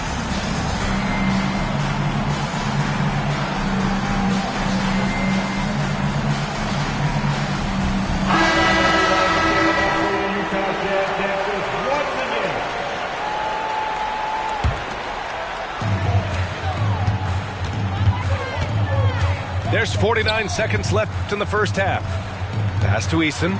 There's 49 seconds left in the first half. Pass to Eason.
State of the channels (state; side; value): identical; both; correlation 1.00